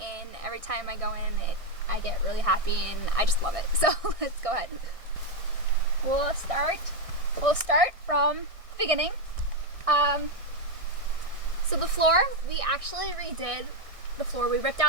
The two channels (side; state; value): left; late; 1.6 ms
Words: and every time I go in, I get really happy and I just love it. So let's go ahead. We'll start from the beginning. So the floor, we actually redid the floor. We ripped